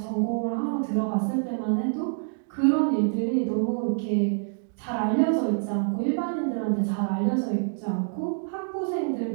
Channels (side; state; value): left; silent; digital silence